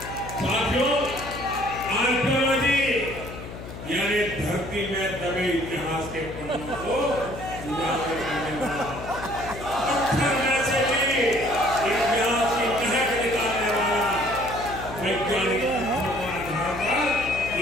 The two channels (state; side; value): noise; left; hum, 11 dB below the sound